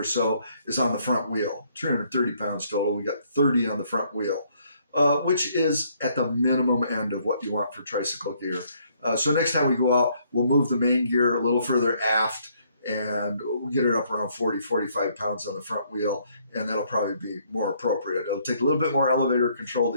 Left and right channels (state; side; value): inverted; both; correlation -0.68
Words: so is on the front wheel. 330 pounds total. We got 30 on the front wheel, which is at the minimum end of what you want for tricycle gear. So next time we go out, we'll move the main gear a little further aft, and we'll get it up around 40, 45 pounds on the front wheel, and that'll probably be more appropriate. It'll take a little bit more elevator control